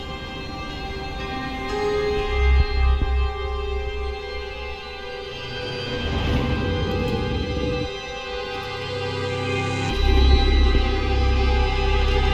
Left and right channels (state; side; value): identical; both; correlation 1.00